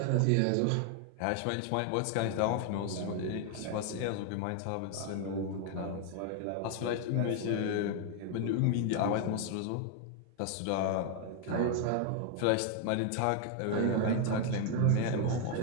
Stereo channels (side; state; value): both; different; correlation 0.00